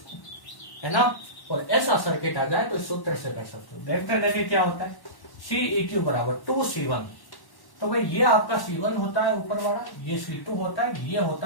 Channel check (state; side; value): late; right; 1.1 ms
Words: है ना। और ऐसा सर्किट आ जाए तो इस सूत्र से कर सकते हो। देखते देखिए क्या होता है, Ceq बराबर 2C1, तो भाई ये आपका C1 होता है ऊपर वाला, ये C2 होता है, ये